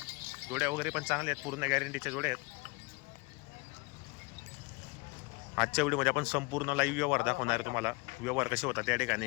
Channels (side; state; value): right; quieter; 27.2 dB